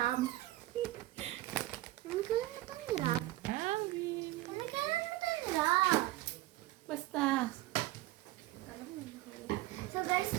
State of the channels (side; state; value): left; quieter; 17.1 dB